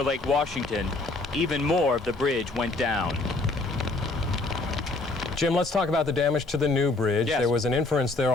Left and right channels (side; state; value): right; quieter; 3.2 dB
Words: Lake Washington, even more of the bridge went down. Jim, let's talk about the damage to the new bridge. Yes. There was an inference there